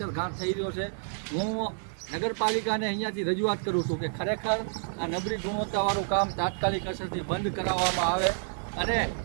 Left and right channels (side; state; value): left; silent; digital silence